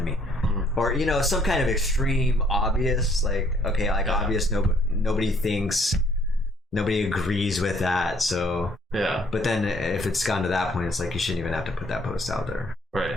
me. Or, some kind of extreme obvious, like, okay, like obvious, nobody agrees with that, so yeah. But then if it's gone to that point, it's like you shouldn't even have to put that post out there,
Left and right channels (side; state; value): both; normal; correlation 0.64